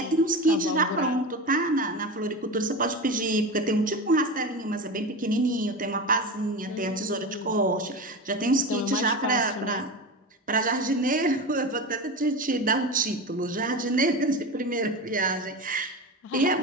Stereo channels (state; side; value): normal; both; correlation 0.25